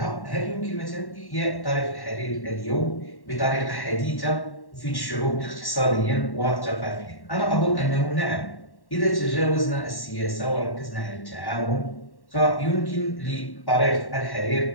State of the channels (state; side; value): late; right; 1.1 ms